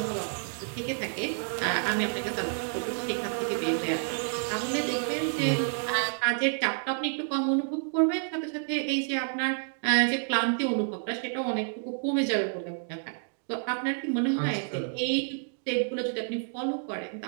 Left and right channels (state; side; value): silent; left; 58 dB below the other